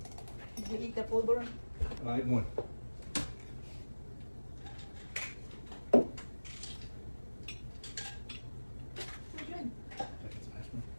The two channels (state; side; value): inverted; both; correlation -1.00